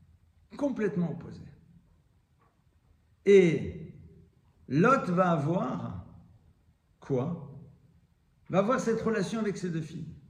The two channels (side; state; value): both; identical; correlation 1.00